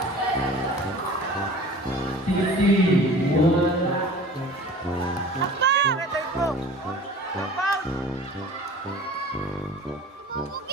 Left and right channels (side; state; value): both; normal; correlation 0.43